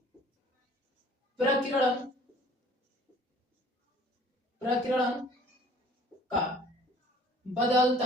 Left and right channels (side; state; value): both; normal; correlation 0.52